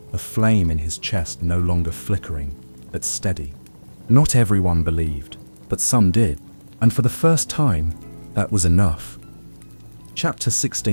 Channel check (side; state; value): both; inverted; correlation -1.00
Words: a flame in his chest no longer flickering, but steady. Not everyone believed, but some did, and for the first time, that was enough. Chapter